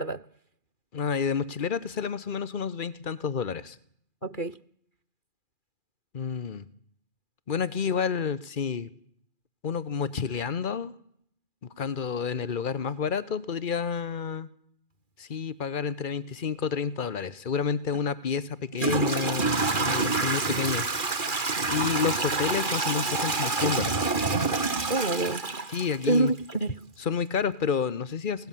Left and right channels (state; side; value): late; right; 2.4 ms